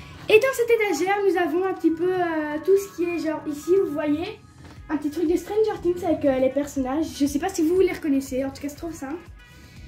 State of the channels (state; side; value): identical; both; correlation 1.00